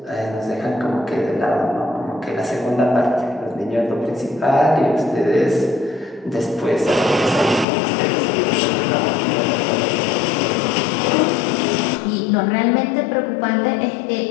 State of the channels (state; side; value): drops out; right; at 7.7 s